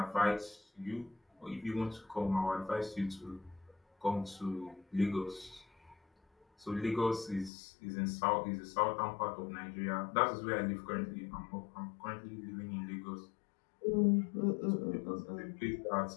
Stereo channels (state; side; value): drops out; right; at 7.5 s